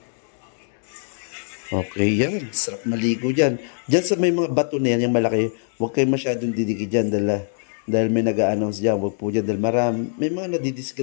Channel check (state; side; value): silent; right; digital silence